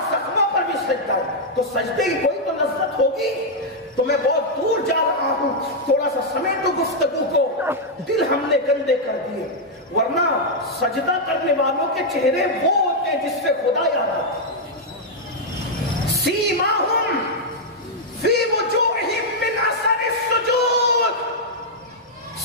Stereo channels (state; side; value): normal; both; correlation -0.04